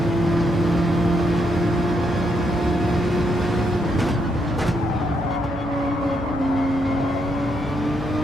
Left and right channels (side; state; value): both; normal; correlation 0.77